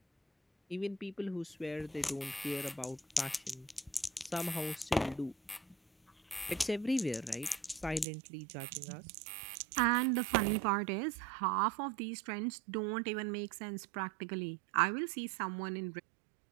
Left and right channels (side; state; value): left; drops out; at 8.1 s